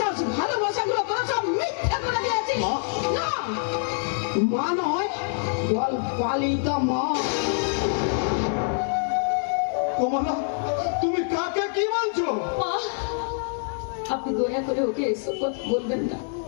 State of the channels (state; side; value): silent; right; digital silence